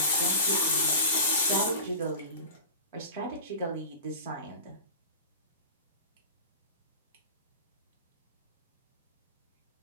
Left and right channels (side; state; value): both; inverted; correlation -0.32